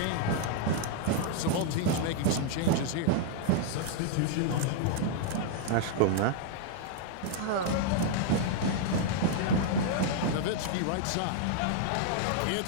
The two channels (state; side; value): different; both; correlation -0.01